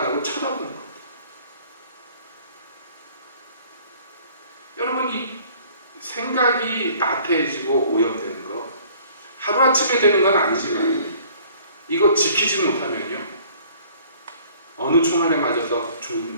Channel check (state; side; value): inverted; both; correlation -0.54